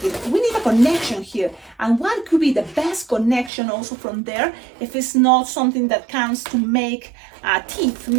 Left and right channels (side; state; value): left; drops out; at 3.5 s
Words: we need a connection here, and what could be the best connection also from there, if it's not something that counts to make teeth,